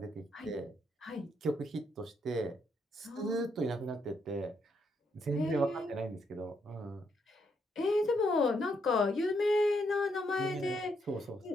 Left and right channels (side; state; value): both; normal; correlation 0.76